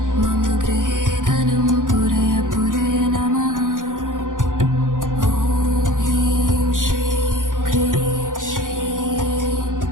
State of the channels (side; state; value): left; late; 0.88 ms